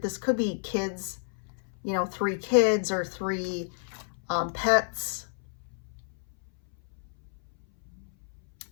This could be kids, you know, 3 kids or 3 pets.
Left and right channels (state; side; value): silent; right; 58 dB below the other